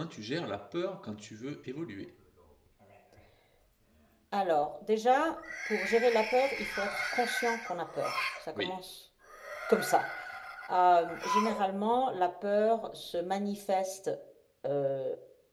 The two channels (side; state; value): both; identical; correlation 1.00